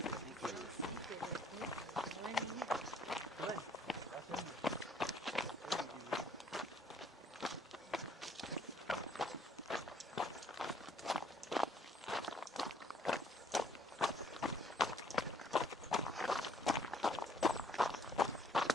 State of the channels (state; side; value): normal; both; correlation 0.62